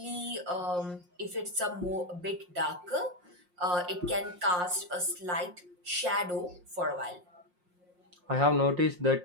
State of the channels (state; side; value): late; left; 5.6 ms